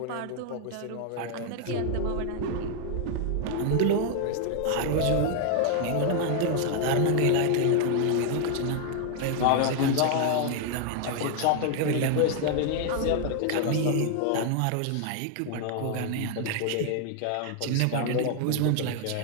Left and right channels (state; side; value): different; both; correlation 0.00